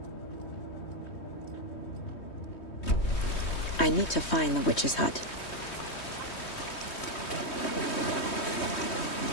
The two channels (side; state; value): right; late; 3.2 ms